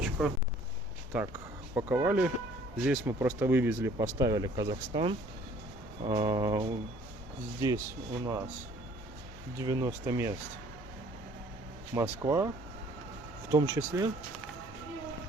Так, паковали. Здесь мы просто вывезли, поставили Казахстан. Здесь у нас 90 мест Москва, в том числе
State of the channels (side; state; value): both; normal; correlation 0.56